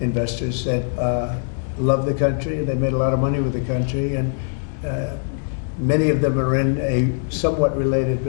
investors that love the country. They made a lot of money with the country, and many of them are in a somewhat related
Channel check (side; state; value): right; silent; 64 dB below the other